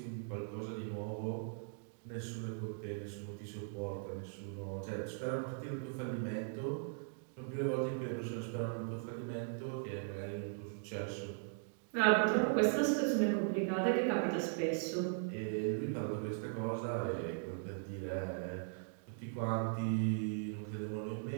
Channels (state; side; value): silent; left; digital silence